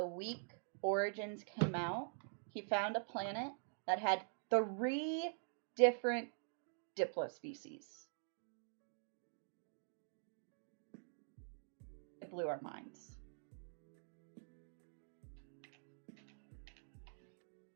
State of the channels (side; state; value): left; silent; digital silence